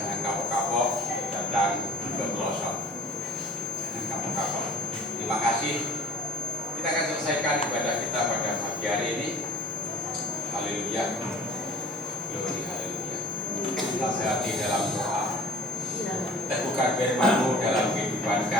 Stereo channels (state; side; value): normal; both; correlation 0.47